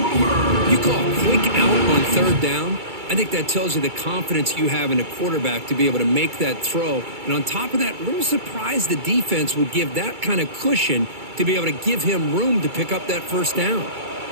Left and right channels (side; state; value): left; late; 2.3 ms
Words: You call a quick out on 3rd down. I think that tells you the confidence you have in a quarterback to be able to make that throw. And on top of that, a little surprised the defense would give that kind of cushion to be able to give him room to pick up that first down.